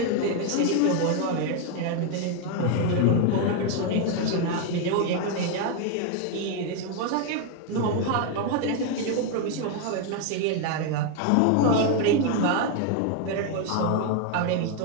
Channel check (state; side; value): different; both; correlation 0.01